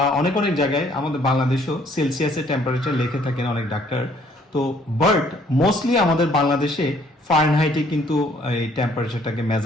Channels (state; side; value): normal; both; correlation 0.62